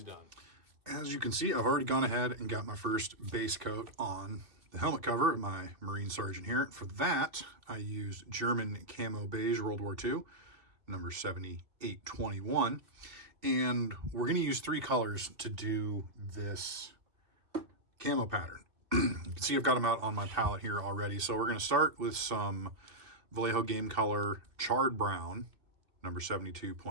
done. As you can see, I've already gone ahead and got my first base coat on the helmet cover of my Marine Sergeant here. For that, I used German Camo Beige World War II, number 7821. And we're going to use 3 colors to do this camo pattern. You can see I've got them out on my palette here already. So we're going to start with some Vallejo Game Color Charred Brown, number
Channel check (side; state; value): left; late; 2.3 ms